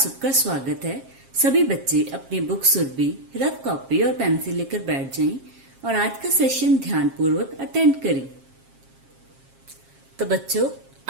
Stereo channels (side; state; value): left; late; 7.4 ms